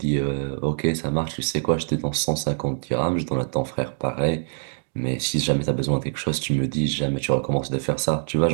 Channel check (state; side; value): silent; left; digital silence